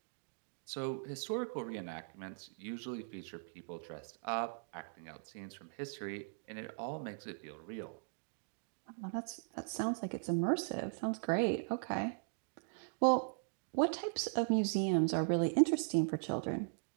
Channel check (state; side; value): silent; left; digital silence